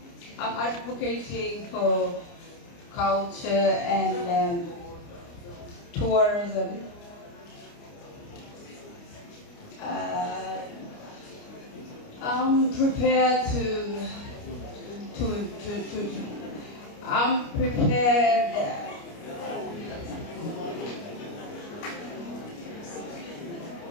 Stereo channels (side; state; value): right; late; 29 ms